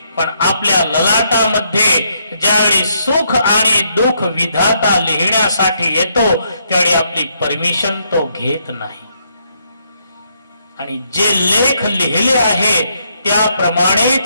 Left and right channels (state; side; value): inverted; both; correlation -0.75